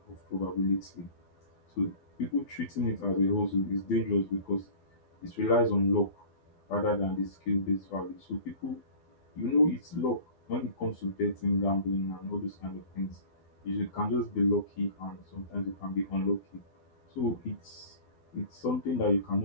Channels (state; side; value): late; right; 12 ms